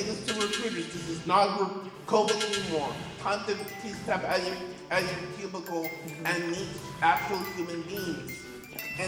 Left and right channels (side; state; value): both; identical; correlation 1.00